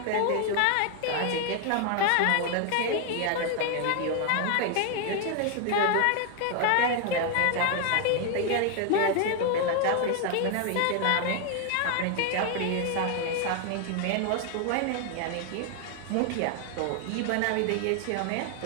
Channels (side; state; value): both; different; correlation 0.00